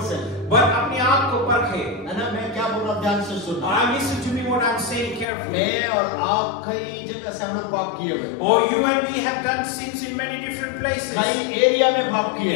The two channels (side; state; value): right; drops out; at 5.2 s